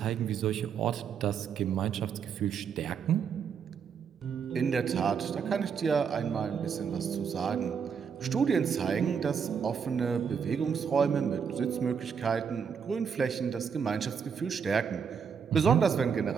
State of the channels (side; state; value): left; quieter; 6.7 dB